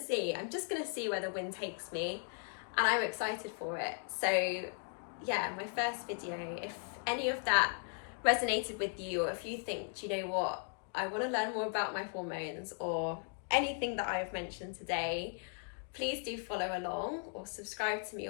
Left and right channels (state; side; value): silent; right; 53 dB below the other